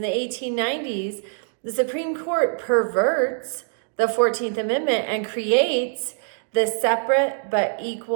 1890s, the Supreme Court perverts the 14th Amendment and creates the separate but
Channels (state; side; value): silent; left; digital silence